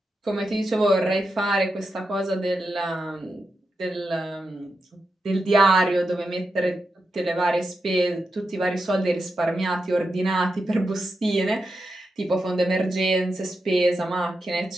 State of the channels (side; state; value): both; normal; correlation 0.88